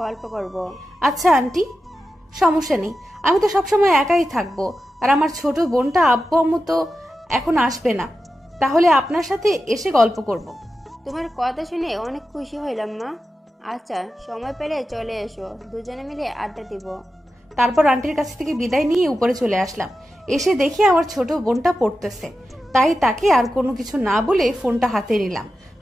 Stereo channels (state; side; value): normal; both; correlation 0.91